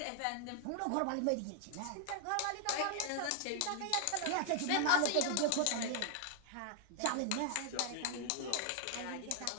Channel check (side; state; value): both; different; correlation 0.00